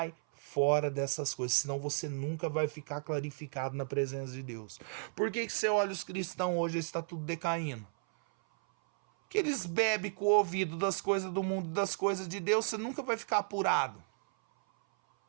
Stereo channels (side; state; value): left; silent; 55 dB below the other